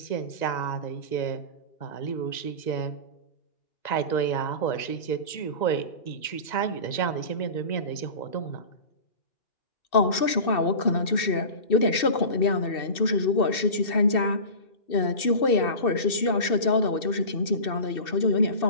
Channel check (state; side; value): late; right; 2.7 ms